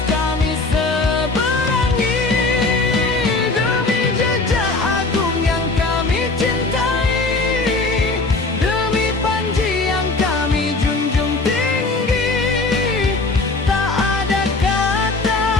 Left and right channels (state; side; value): quieter; right; 3.5 dB